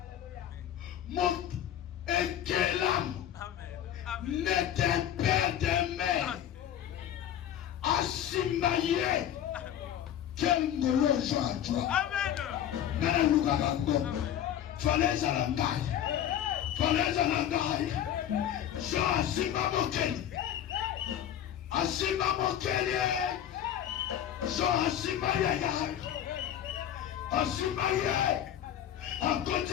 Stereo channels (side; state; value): right; quieter; 10.5 dB